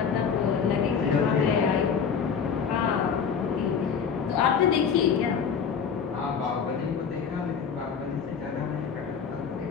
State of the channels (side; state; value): right; quieter; 6.6 dB